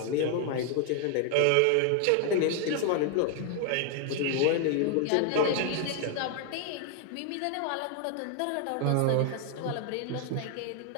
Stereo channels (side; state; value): both; different; correlation 0.01